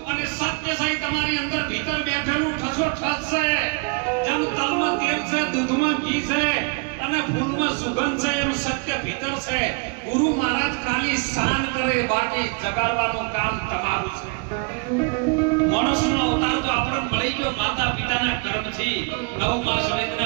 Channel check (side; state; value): left; quieter; 33.4 dB